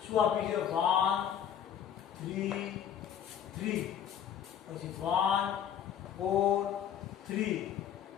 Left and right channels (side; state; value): right; quieter; 9.1 dB